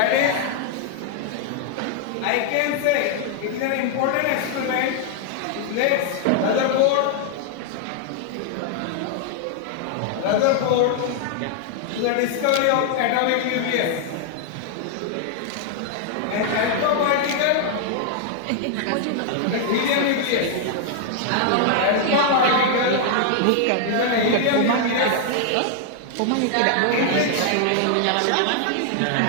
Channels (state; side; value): different; both; correlation 0.00